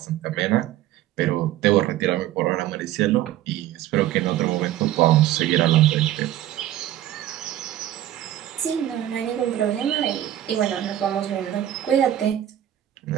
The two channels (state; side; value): quieter; left; 12.8 dB